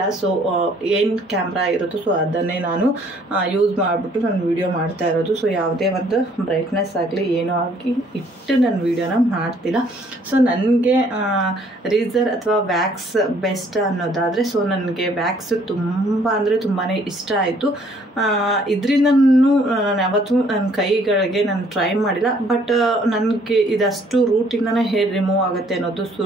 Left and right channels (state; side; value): normal; both; correlation 0.62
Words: ಸೊ ಏನು ಕ್ಯಾಮ್ರಾ ಇರುತ್ತೋ ಸೊ ಅದನ್ನೇ ನಾನು ಯೂಸ್ ಮಾಡಿಬಿಟ್ಟು ನಾನು ವಿಡಿಯೋ ಮಾಡ್ತಾ ಇರೋದು. ಸೊ ಯಾವುದೇ ಒಂದು ಬ್ರೈಟ್ನೆಸ್ ಆಗಲಿ ಏನೋ ಆಗಿ ಇಟ್ಟು ನಾನು ವಿಡಿಯೋನ ಮಾಡ್ತಿಲ್ಲ. ಸೊ ನನಗೆ ರೀಸರ್ ಅಥವಾ ವ್ಯಾಕ್ಸ್ ಬೆಸ್ಟ್ ಅನ್ನೋದಾದರೆ ಸೊ ನನಗೆ ವ್ಯಾಕ್ಸ್ ತುಂಬ ಅಂದರೆ ತುಂಬಾ ಇಷ್ಟ ಆಯಿತು. ಇದರಿಂದ ನಾನು ಯಾವತ್ತೂ ನನ್ನ ಕೈಗಳಿಗೆ ನಾನು ಟ್ರೈ ಮಾಡಿಲ್ಲ. ಬಟ್ ನನಗೆ ಇದಷ್ಟು ರೂಟಿಂದನೇ ಹೇರ್ ರಿಮೂವ್ ಆಗುತ್ತೆ ಅನ್ನೋದು